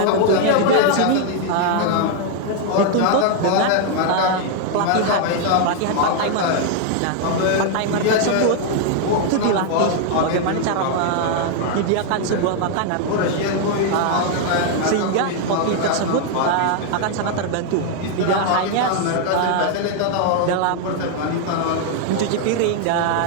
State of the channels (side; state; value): both; different; correlation 0.00